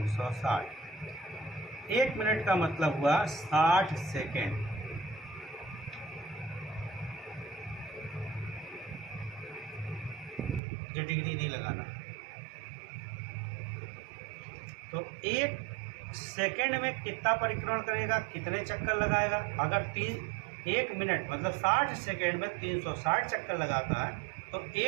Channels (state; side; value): drops out; left; at 10.6 s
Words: 1 मिनट का मतलब हुआ 60 सेकेंड। ये डिग्री नहीं लगाना। तो 1 सेकेंड में कितना परिक्रमण करेगा, कितने चक्कर लगाएगा। अगर 1 मिनट मतलब 60 सेकेंड में 360 चक्कर लगाता है तो